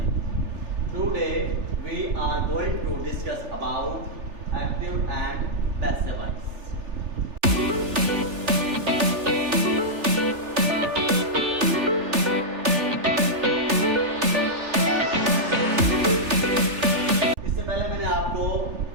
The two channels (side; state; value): left; late; 3.4 ms